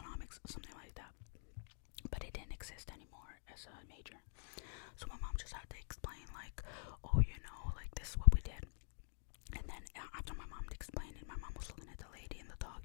something like that. But it didn't exist anymore as a major. So my mom just had to explain this is what we did. And then after my mom explained it, my mom was looking at the lady in the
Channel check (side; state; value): right; silent; digital silence